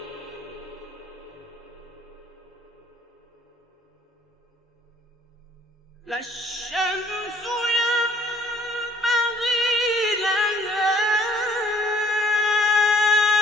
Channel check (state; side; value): normal; both; correlation 0.59